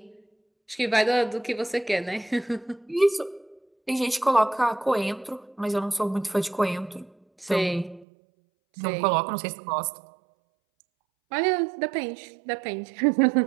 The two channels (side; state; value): left; drops out; at 8.1 s